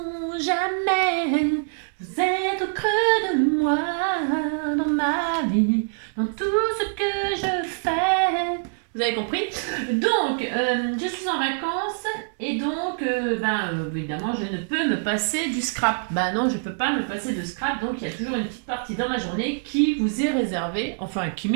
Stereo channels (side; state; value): left; silent; digital silence